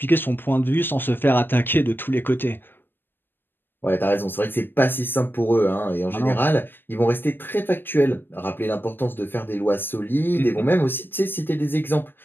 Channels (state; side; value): late; right; 0.096 ms